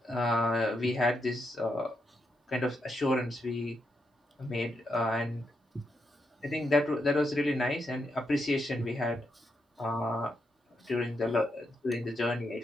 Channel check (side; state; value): both; normal; correlation 0.82